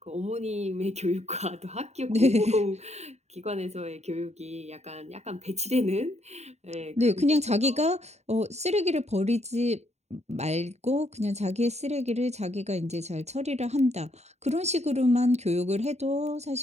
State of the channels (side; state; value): left; late; 0.32 ms